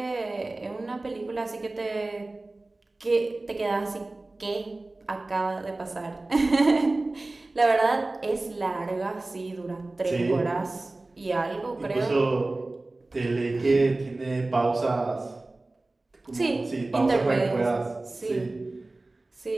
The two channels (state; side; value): quieter; left; 3.0 dB